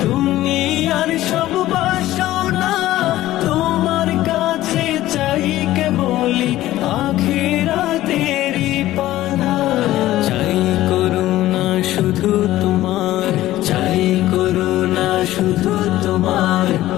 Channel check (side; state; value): right; quieter; 15.2 dB